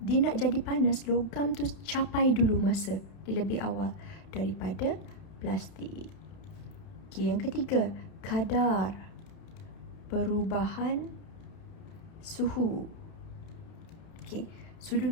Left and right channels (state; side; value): late; right; 31 ms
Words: nak jadi panas, logam tu capai dulu masa di lebih awal daripada plastik. Okey, yang ketiga, kadar perubahan suhu. Okey, sudu